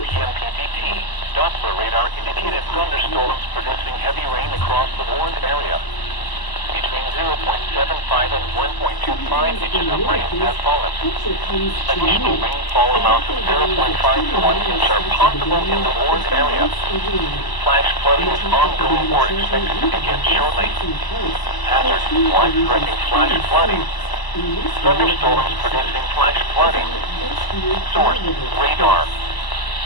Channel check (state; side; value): late; right; 1.0 ms